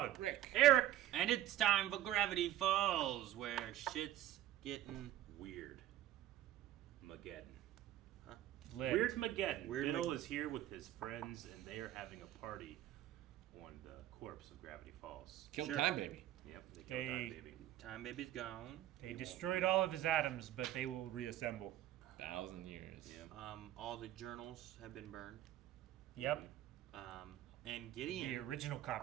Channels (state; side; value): quieter; left; 13.2 dB